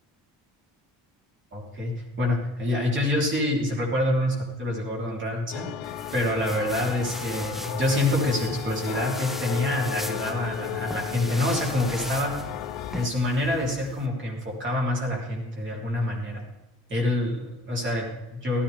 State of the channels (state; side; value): normal; both; correlation 0.52